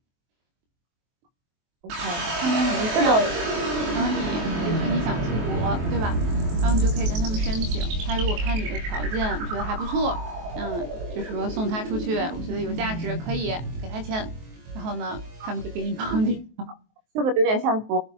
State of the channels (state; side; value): late; left; 23 ms